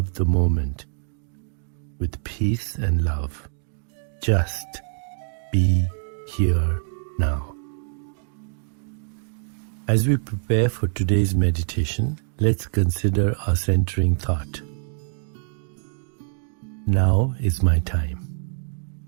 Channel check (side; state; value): left; silent; digital silence